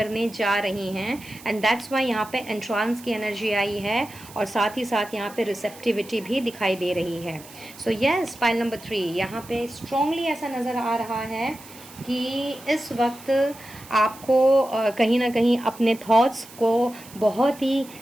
जा रही हैं एंड दैट्स वाई यहाँ पे एंट्रांस की एनर्जी आई है और साथ ही साथ यहाँ पे रिसेप्टिविटी भी दिखाई दे रही है। सो यस, पाइल नंबर 3, यहाँ पे स्ट्रॉन्गली ऐसा नज़र आ रहा है कि इस वक्त आपको कहीं ना कहीं अपने थॉट्स को बहुत ही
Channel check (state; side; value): noise; right; hiss, 19 dB below the sound